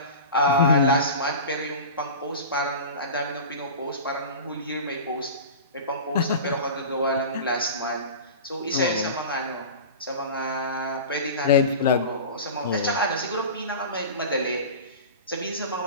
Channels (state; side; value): inverted; both; correlation -0.32